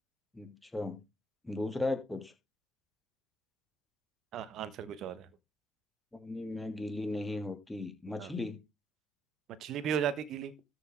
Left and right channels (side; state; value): both; normal; correlation 0.71